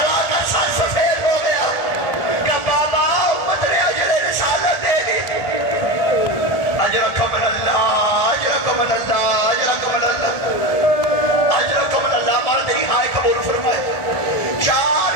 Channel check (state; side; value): late; right; 1.4 ms